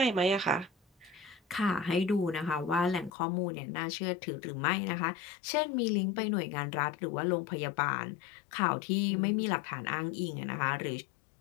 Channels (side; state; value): right; drops out; at 3.1 s